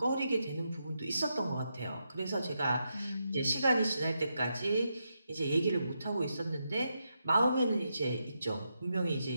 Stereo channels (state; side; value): inverted; both; correlation -0.84